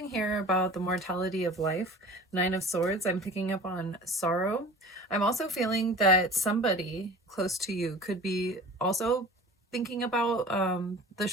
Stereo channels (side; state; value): both; normal; correlation 0.41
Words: here about the mortality of life. Nine of Swords, I'm picking up on sorrow. I'm also feeling that somebody close to you could be also thinking about the